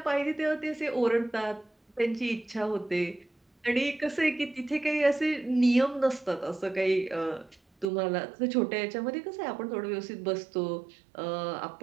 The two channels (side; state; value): left; drops out; at 7.9 s